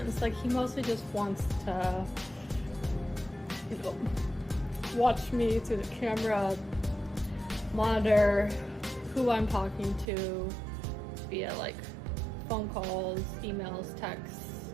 Like he mostly just wants to, watch me through the camera, monitor who I'm talking to via like phone calls, emails, texts,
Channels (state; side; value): drops out; left; at 10.1 s